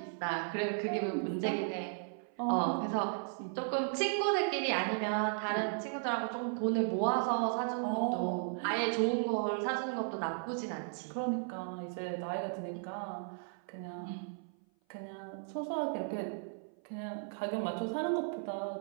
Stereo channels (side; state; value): left; silent; 54 dB below the other